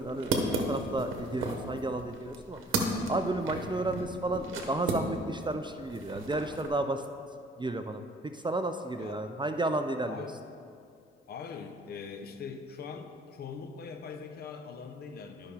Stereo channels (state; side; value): normal; both; correlation 0.53